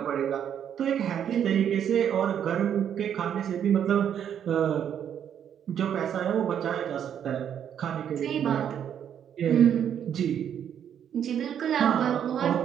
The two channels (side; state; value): left; quieter; 9.0 dB